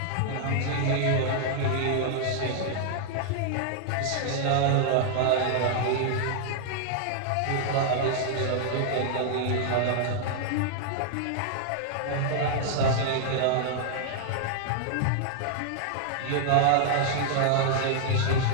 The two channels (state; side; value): different; both; correlation -0.01